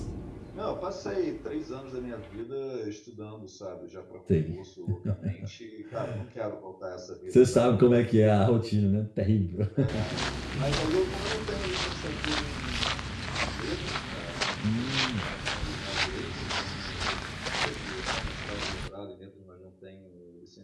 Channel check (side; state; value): both; identical; correlation 1.00